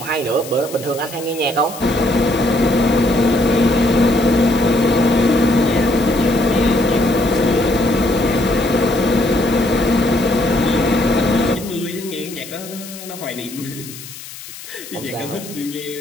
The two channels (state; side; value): noise; left; hiss, 14 dB below the sound